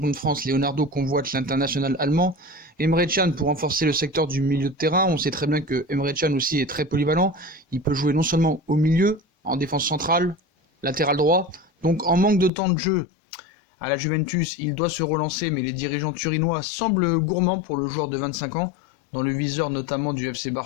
de France. Leonardo convoite l'international allemand. Emre Can pour renforcer le secteur du milieu de terrain. On sait très bien que Emre Can aussi est très polyvalent. Il peut jouer non seulement au milieu, en défense centrale, latéral droit. Donc en manque de temps de jeu à la Juventus, il doit se relancer, mais les dirigeants turinois semblent gourmands pour le joueur de 25 ans, dans le viseur notamment du FC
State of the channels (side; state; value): right; drops out; at 12.5 s